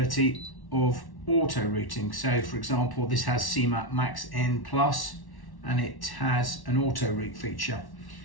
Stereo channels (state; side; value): late; right; 1.1 ms